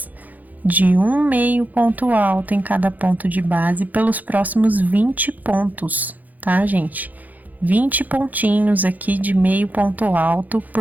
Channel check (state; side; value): late; left; 0.081 ms